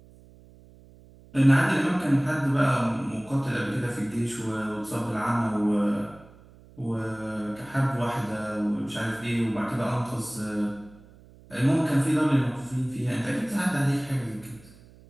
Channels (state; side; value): noise; right; hum, 24 dB below the sound